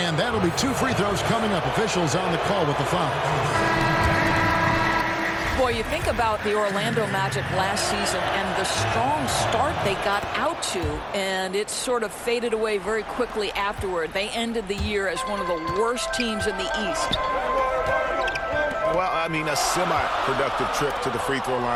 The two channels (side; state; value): both; identical; correlation 1.00